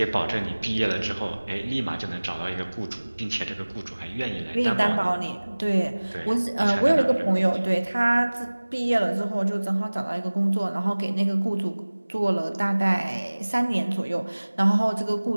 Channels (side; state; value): both; inverted; correlation -1.00